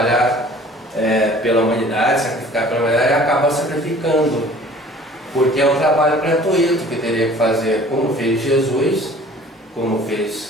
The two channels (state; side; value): normal; both; correlation 0.49